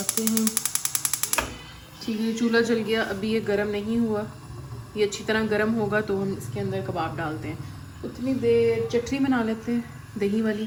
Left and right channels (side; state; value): both; identical; correlation 1.00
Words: हैं। ठीक है, चूल्हा जल गया। अभी ये गर्म नहीं हुआ, ये अच्छी तरह गर्म होगा तो हम इसके अंदर कबाब डालते हैं। उतनी देर चटनी बना लेते हैं दही वाली,